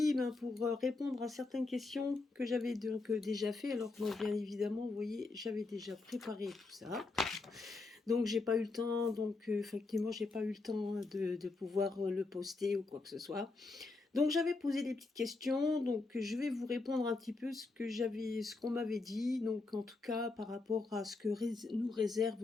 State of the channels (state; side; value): quieter; right; 3.6 dB